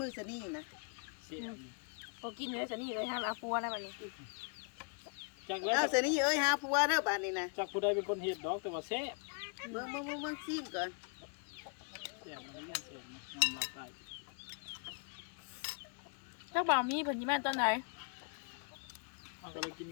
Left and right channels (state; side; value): quieter; right; 39.3 dB